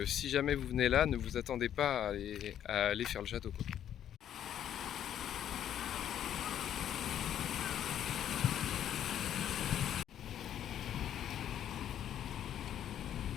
si jamais vous venez là, ne vous attendez pas à aller faire le château, quoi.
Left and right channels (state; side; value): quieter; right; 10.4 dB